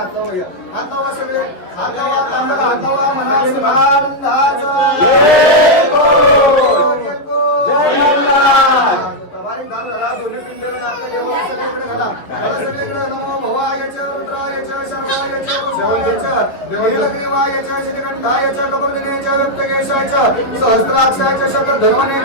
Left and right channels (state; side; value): late; right; 11 ms